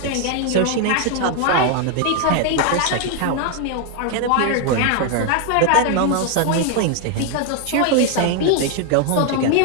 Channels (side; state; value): both; different; correlation 0.00